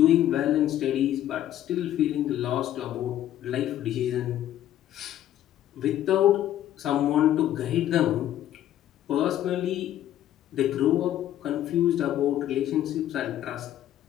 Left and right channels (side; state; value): right; quieter; 12.1 dB